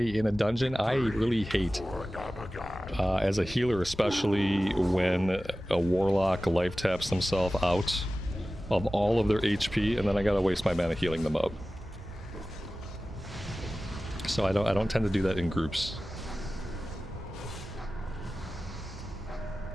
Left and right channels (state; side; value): normal; both; correlation 0.96